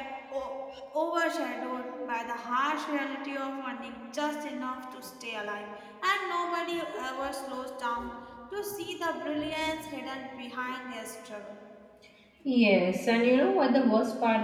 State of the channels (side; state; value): both; identical; correlation 1.00